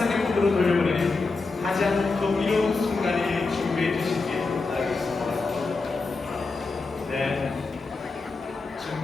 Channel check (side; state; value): right; quieter; 3.9 dB